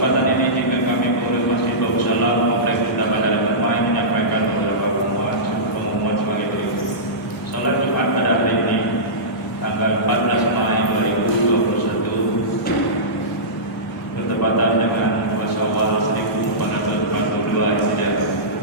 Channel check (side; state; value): both; normal; correlation -0.18